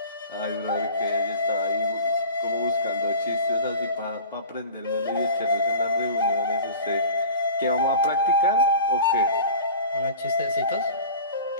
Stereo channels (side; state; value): both; inverted; correlation -0.39